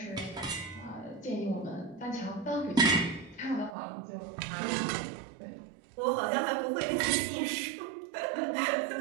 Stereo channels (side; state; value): left; drops out; at 3.7 s